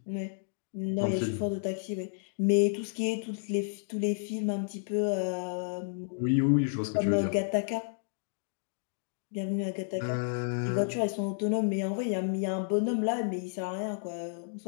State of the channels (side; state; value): right; silent; digital silence